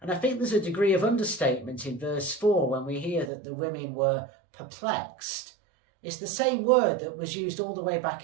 And I think there's a degree of understatement in verse 4 when we hear that the women were perplexed. It's the same word that was used all the way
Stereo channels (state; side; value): drops out; left; at 3.3 s